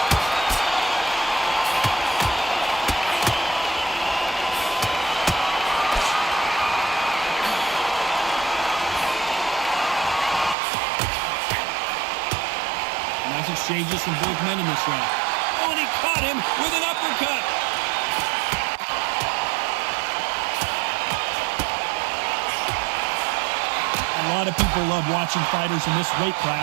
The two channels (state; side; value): drops out; left; at 10.6 s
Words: Nice exchanges from both men in this round. Oh, and he caught him with an uppercut. A lot of people love watching fighters in this weight